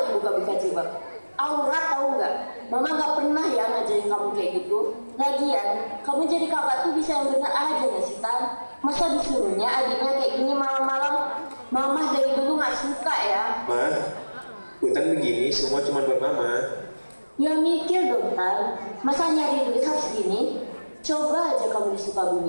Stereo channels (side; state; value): both; inverted; correlation -1.00